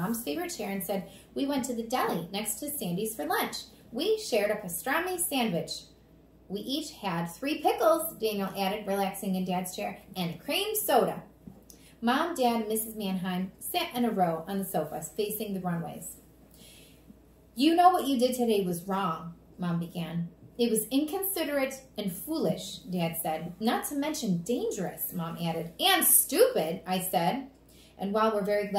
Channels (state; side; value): identical; both; correlation 1.00